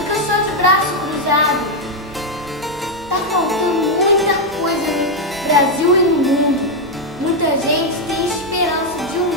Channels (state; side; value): normal; both; correlation 0.01